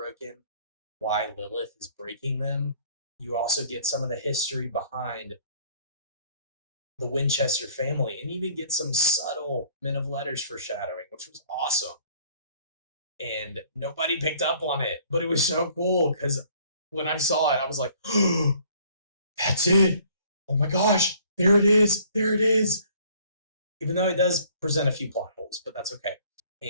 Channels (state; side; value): inverted; both; correlation -0.58